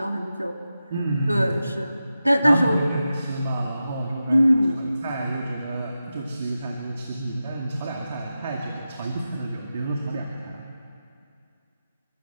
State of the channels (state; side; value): inverted; both; correlation -0.92